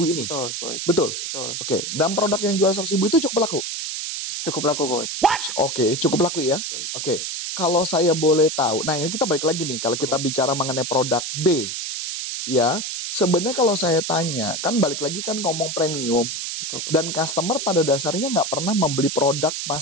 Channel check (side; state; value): right; noise; hiss, 4 dB below the sound